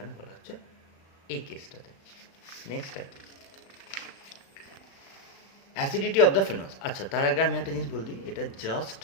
বলা হচ্ছে এই কেসটাতে। Next acidity of the phenols. আচ্ছা, তার আগে আমি একটা জিনিস বল দিই, এটা জাস্ট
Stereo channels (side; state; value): right; late; 36 ms